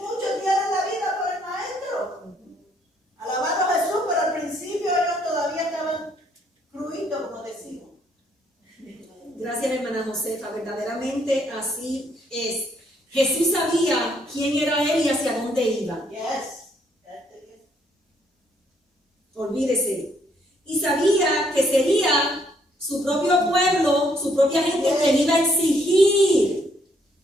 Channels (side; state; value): both; normal; correlation 0.69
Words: dieron la vida por el maestro. Alabando a Jesús, pero al principio ellos todavía estaban cruitos, como decimos. Gracias, hermana Josefa. Verdaderamente así es. Jesús sabía quién era él y hacia dónde iba. Yes. Olvídese. Y sabía que sería su propio pueblo, su propia gente que le iba a exigir.